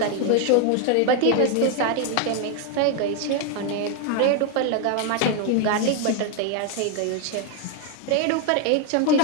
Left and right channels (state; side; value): different; both; correlation 0.01